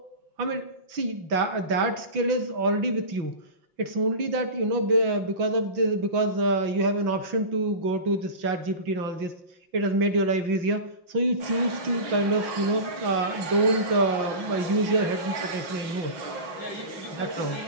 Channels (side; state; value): left; late; 5.6 ms